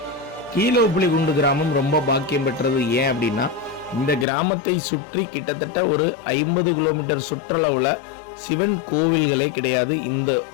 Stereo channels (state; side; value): drops out; right; at 4.2 s